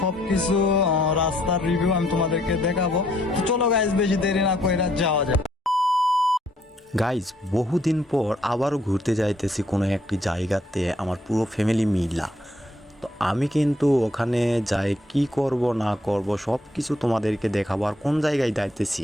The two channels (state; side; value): normal; both; correlation 0.69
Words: সবকিছু রাস্তার রিভিউ আমি তোমাদেরকে দেখাবো। তো চলো গাইজ বেশি দেরি না করে যাওয়া যায়। গাইজ বহুদিন পর আবারও ঘুরতে যাইতেছি কোনো একটি জায়গাতে আমার পুরো ফ্যামিলি মিলা। তো আমি কিন্তু ওখানে যাই কি করব না করব সব কিছু তোমাদেরকে দেখাবো, আর কোন জায়গায় যাইতেছি